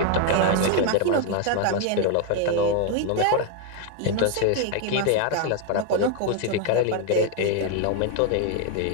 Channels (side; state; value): both; different; correlation 0.00